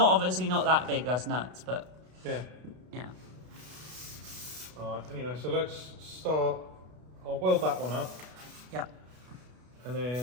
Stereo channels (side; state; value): left; late; 32 ms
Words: not that big, that's nuts, but Yeah. yeah. Alright, anyway, so let's start. I'll weld that one up, Yeah. and